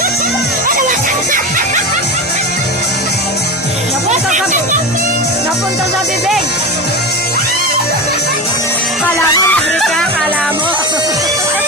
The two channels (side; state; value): both; normal; correlation 0.22